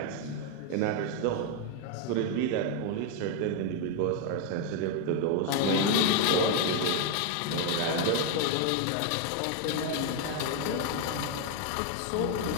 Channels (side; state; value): both; different; correlation 0.01